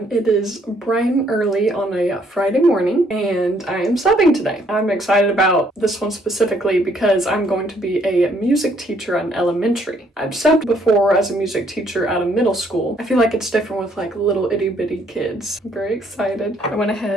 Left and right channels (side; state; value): both; normal; correlation 0.67